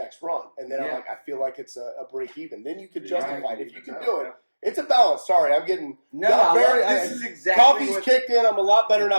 run. And then I'm like, I feel like it's a break even. Then you could justify it. If you can do it, it's a balance. Sorry, I'm getting This is exactly coffee's what, kicked in. I'm a lot better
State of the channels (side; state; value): both; inverted; correlation -1.00